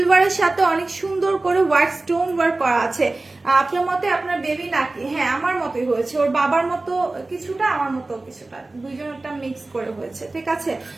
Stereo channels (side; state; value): left; quieter; 3.1 dB